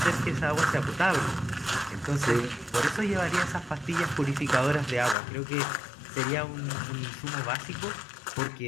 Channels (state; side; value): drops out; right; at 5.2 s